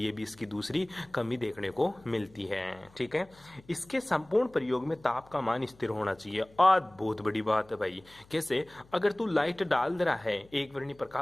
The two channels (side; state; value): left; noise; hum, 27 dB below the sound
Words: ये भी इसकी दूसरी कमी देखने को मिलती है, ठीक है। इसके संपूर्ण प्रयोग में ताप का मान स्थिर होना चाहिए। आज बहुत बड़ी बात है भाई, कैसे, अगर तू लाइट डाल रहा है एक वर्णी